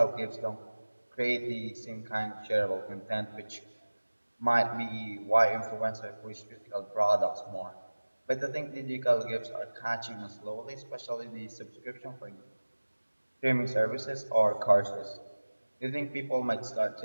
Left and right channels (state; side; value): inverted; both; correlation -1.00